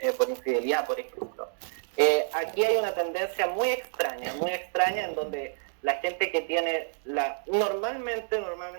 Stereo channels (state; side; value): silent; left; digital silence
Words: por infidelidad, por ejemplo. Aquí hay una tendencia muy extraña en donde la gente que tiene normalmente